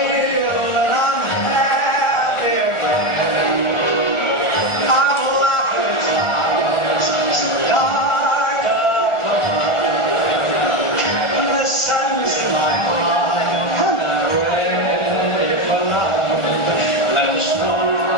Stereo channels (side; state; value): right; late; 1.4 ms